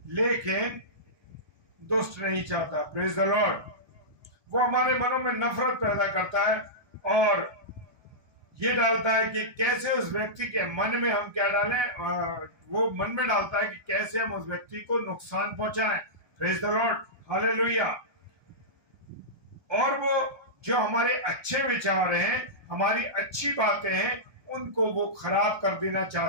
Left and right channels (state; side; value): late; left; 1.2 ms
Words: लेकिन दुष्ट नहीं चाहता। Praise the Lord. वो हमारे मनों में नफरत पैदा करता है और ये डालता है कि कैसे उस व्यक्ति के मन में हम क्या डालें, वो मन में डालता है कि कैसे हम उस व्यक्ति को नुकसान पहुंचाएं। Praise the Lord, hallelujah. और वो जो हमारे अच्छे विचार हैं, हमारी अच्छी बातें हैं, उनको वो खराब कर देना